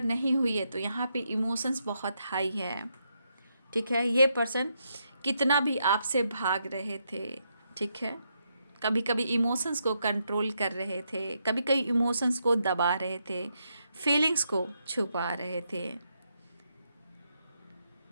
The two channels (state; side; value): inverted; both; correlation -0.80